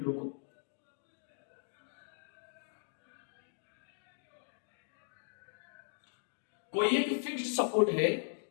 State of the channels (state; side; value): silent; right; digital silence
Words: रुको, कोई एक फिक्स्ड सपोर्ट है,